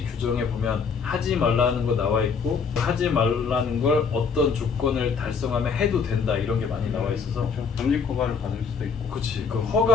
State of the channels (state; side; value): quieter; right; 5.6 dB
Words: 규정에 보면 하지 말라는 거 나와 있고, 하지 말라는 걸 어떤 조건을 달성하면 해도 된다 이런 게 많이 나와 있어서. 그렇죠. 겸직 허가를 받을 수도 있고. 그치. 그